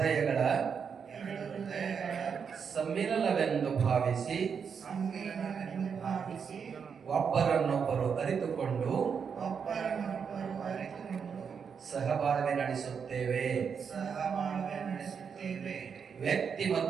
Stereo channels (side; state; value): left; quieter; 6.6 dB